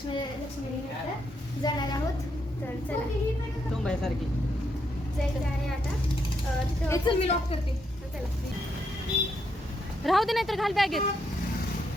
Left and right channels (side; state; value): both; normal; correlation 0.78